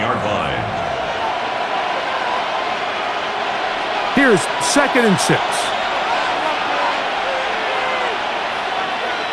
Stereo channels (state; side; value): identical; both; correlation 1.00